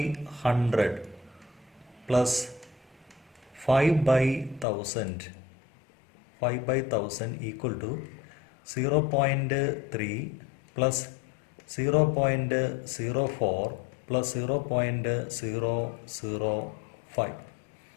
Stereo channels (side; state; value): right; drops out; at 4.7 s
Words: plus 5/1000 equal to 0.3 plus 0.04 plus 0.005.